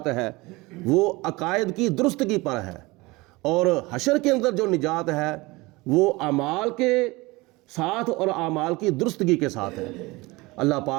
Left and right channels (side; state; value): left; quieter; 22.7 dB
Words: ہے وہ عقائد کی درستگی پر ہے، اور حشر کے اندر جو نجات ہے وہ اعمال کے ساتھ اور اعمال کی درستگی کے ساتھ ہے۔ اللہ